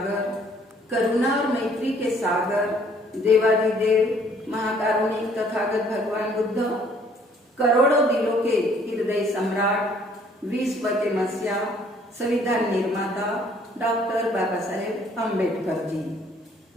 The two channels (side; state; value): both; normal; correlation 0.61